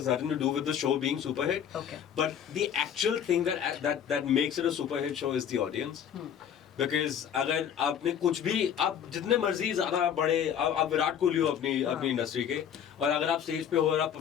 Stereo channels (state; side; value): quieter; right; 8.8 dB